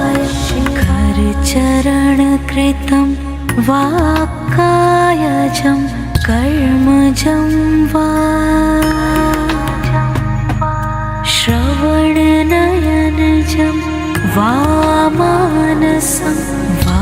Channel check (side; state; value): both; identical; correlation 1.00